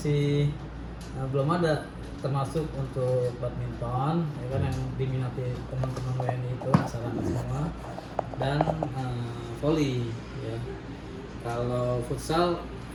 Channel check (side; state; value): both; identical; correlation 1.00